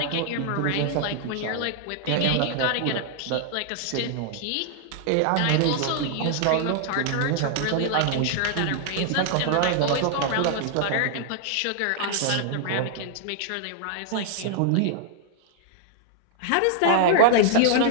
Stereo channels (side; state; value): both; different; correlation -0.01